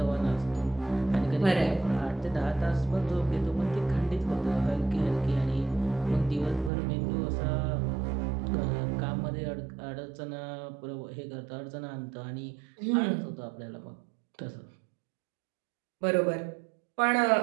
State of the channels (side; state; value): left; drops out; at 6.7 s